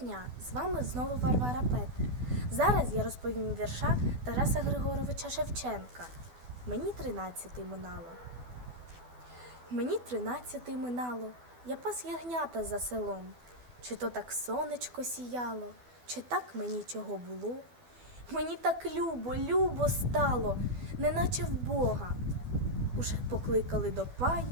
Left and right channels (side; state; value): left; late; 12 ms